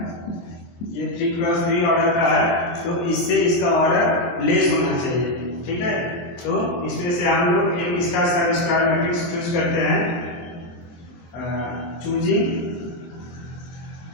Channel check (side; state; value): right; late; 24 ms